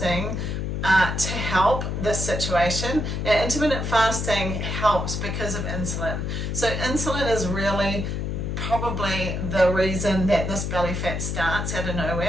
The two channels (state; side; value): noise; left; hum, 2 dB below the sound